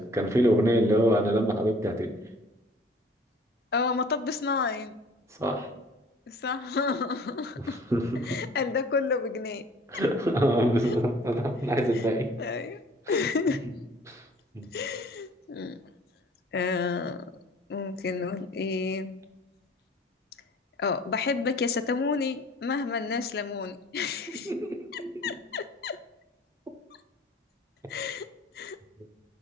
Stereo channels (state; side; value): normal; both; correlation 0.51